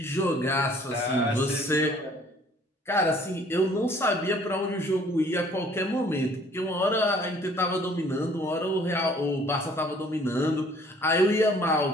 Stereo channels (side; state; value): both; normal; correlation 0.57